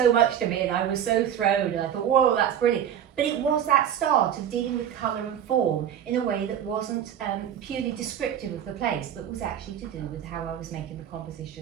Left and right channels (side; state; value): left; quieter; 9.6 dB